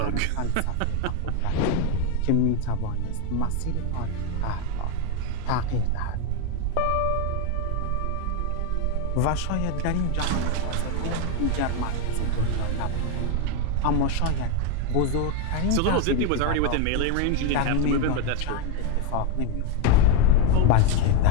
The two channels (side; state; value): both; different; correlation 0.02